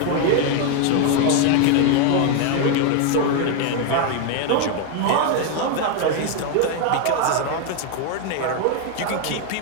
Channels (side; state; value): both; different; correlation 0.01